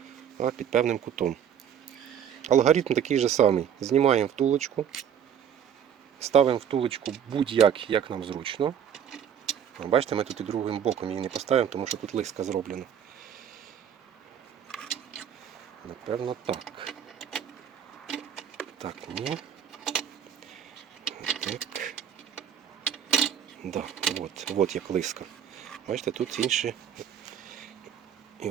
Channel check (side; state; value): left; quieter; 8.8 dB